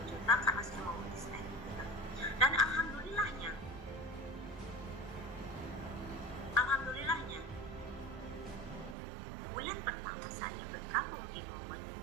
juta karena saya mau resign gitu. Dan alhamdulillahnya bulan pertama saya bergabung di Momen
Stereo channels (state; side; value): drops out; left; at 9.0 s